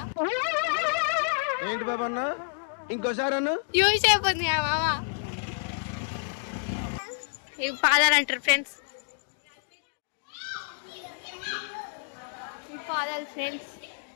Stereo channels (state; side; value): silent; right; digital silence